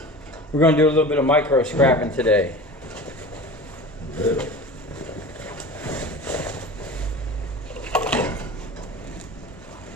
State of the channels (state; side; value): normal; both; correlation 0.35